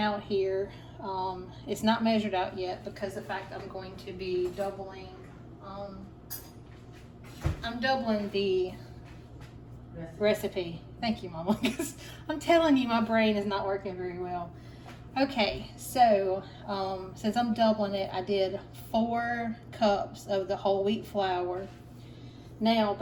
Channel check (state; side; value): identical; both; correlation 1.00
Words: here. It's not measured out yet because the fact I'm going to be doubling, I'm doubling the recipe. Thank you, Mama, because I'm telling you, my brain is not working very well. Okay, so since I'm doubling it, I did 4 cups of the whole wheat flour. Now,